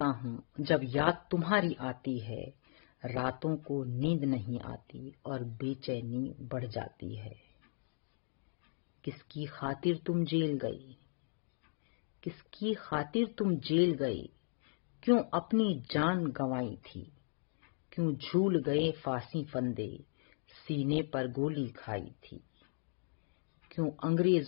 हूं जब याद तुम्हारी आती है। रातों को नींद नहीं आती और बेचैनी बढ़ जाती है। किसकी खातिर तुम जेल गए, क्यों अपनी जान गंवाई थी। क्यों झूल गए फांसी फंदे, सीने पर गोली खाई थी। क्यों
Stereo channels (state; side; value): silent; right; digital silence